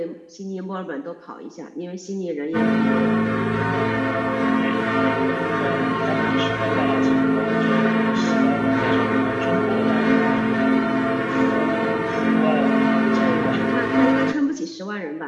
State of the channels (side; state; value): both; identical; correlation 1.00